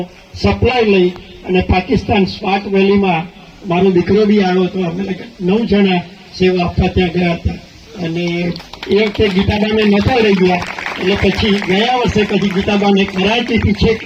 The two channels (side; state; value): both; identical; correlation 1.00